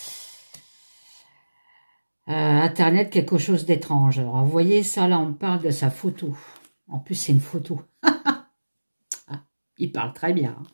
Internet, quelque chose d'étrange. Alors, vous voyez ça, là, on parle de sa photo. En plus, c'est une photo. Ah, il parle très bien. Hein.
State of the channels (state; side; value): inverted; both; correlation -1.00